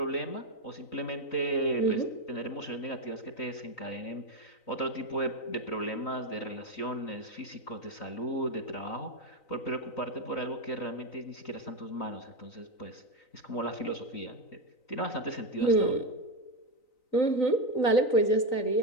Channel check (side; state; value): right; late; 3.9 ms